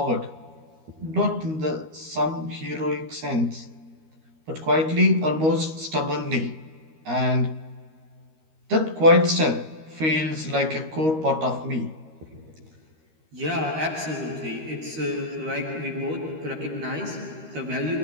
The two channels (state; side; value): late; left; 13 ms